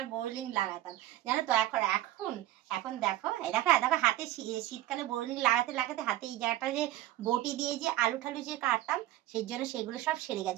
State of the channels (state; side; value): quieter; left; 14.8 dB